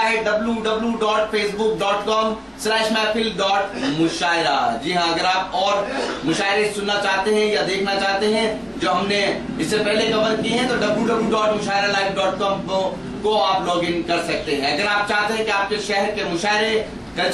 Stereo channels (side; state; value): both; identical; correlation 1.00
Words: www.facebook.com/महफिल.मुशायरा। जी हाँ, अगर आप और मुशायरे सुनना चाहते हैं या देखना चाहते हैं जो हमने इससे पहले कवर किए हैं तो www.mushairalive.com को आप लॉग इन कर सकते हैं। अगर आप चाहते हैं कि आपके शहर के मुशायरे,